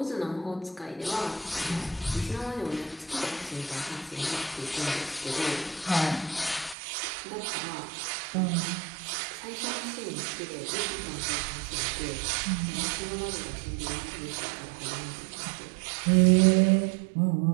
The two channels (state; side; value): drops out; left; at 6.8 s